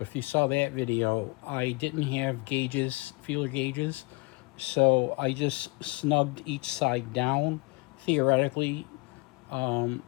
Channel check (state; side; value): quieter; right; 26.5 dB